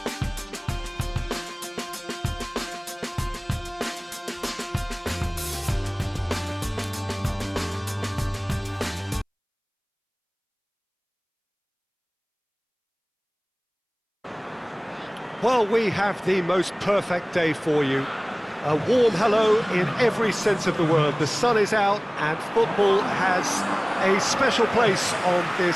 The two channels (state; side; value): identical; both; correlation 1.00